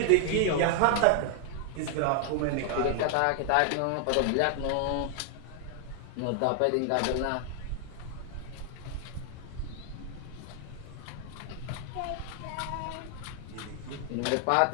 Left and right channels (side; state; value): both; different; correlation 0.00